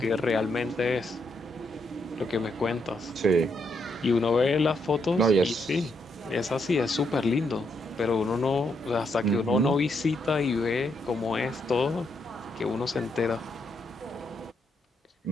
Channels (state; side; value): normal; both; correlation 0.78